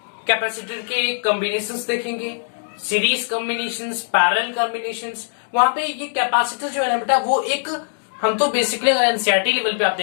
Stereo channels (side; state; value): right; silent; digital silence